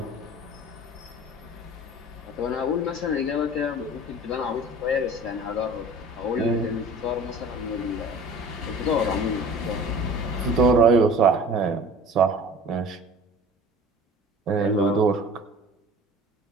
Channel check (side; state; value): both; normal; correlation 0.43